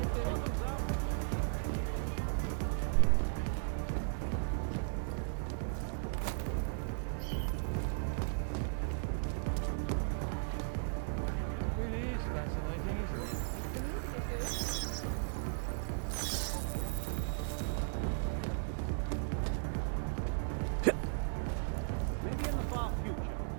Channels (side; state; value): left; silent; digital silence